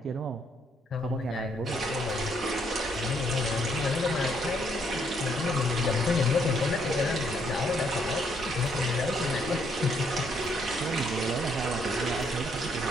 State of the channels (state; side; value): normal; both; correlation 0.71